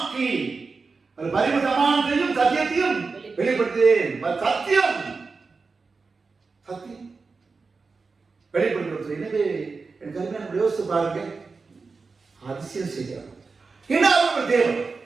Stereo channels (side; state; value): left; quieter; 4.4 dB